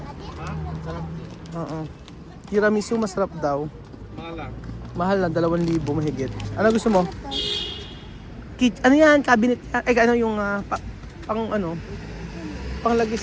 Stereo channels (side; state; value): both; identical; correlation 1.00